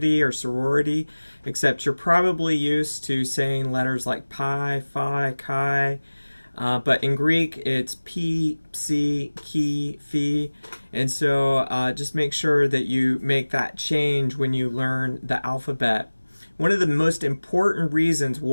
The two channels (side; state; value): both; inverted; correlation -1.00